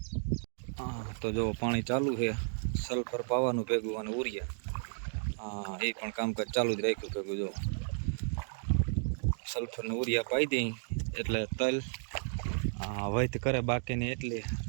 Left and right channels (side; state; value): left; silent; digital silence